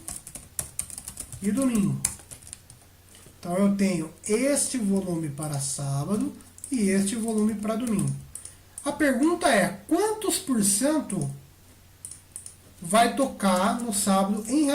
e domingo. Então eu tenho este volume para sábado e este volume para domingo. A pergunta é, quantos por cento vai tocar no sábado em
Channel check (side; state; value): both; identical; correlation 1.00